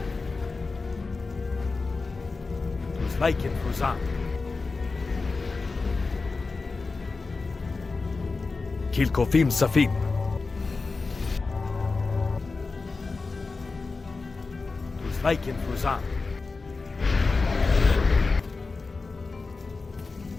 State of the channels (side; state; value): right; quieter; 4.0 dB